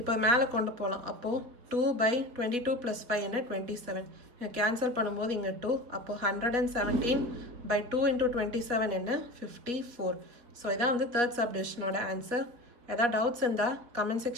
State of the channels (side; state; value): left; late; 4.1 ms